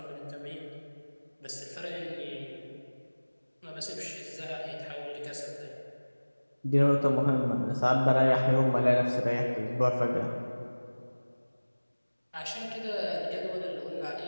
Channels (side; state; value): both; inverted; correlation -1.00